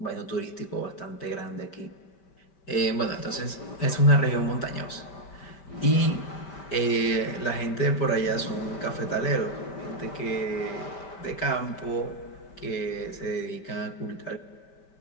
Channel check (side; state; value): right; late; 5.1 ms